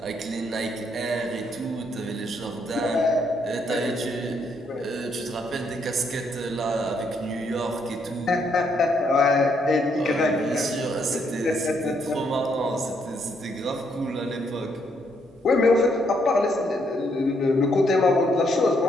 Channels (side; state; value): both; normal; correlation 0.73